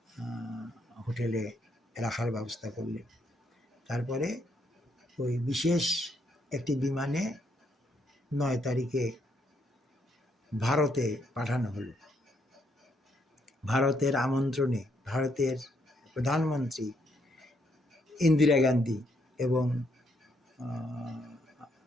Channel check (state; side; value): normal; both; correlation 0.74